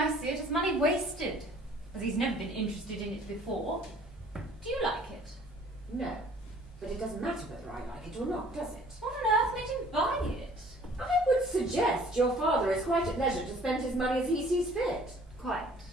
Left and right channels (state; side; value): normal; both; correlation 0.54